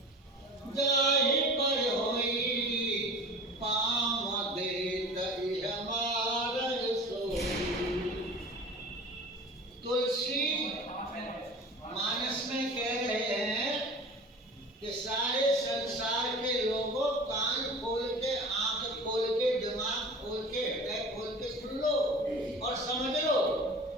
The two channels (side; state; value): both; normal; correlation 0.38